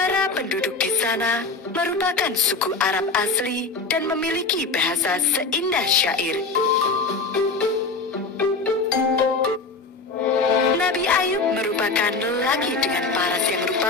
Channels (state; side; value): quieter; right; 3.9 dB